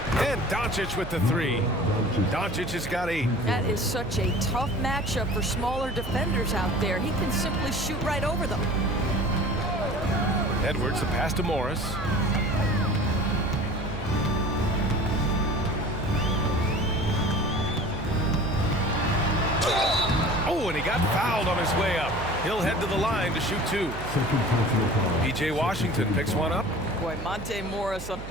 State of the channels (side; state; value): right; noise; hum, 11 dB below the sound